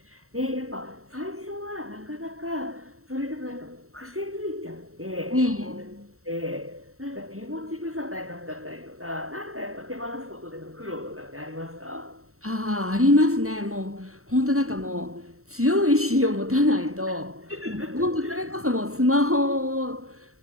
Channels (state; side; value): late; left; 0.63 ms